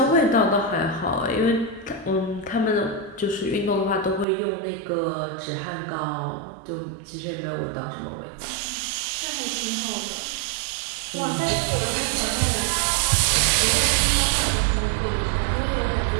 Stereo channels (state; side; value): drops out; left; at 4.2 s